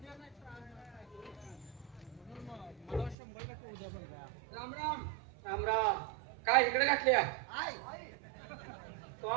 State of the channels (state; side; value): drops out; left; at 3.2 s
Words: राम राम. राम राम. काय इकडे घातल्या